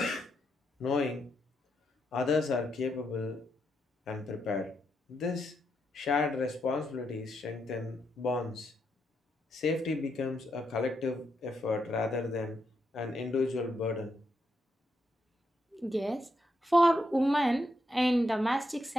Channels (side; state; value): both; normal; correlation 0.81